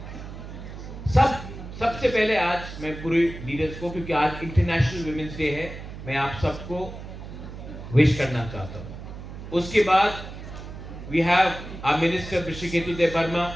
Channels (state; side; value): noise; right; hum, 11 dB below the sound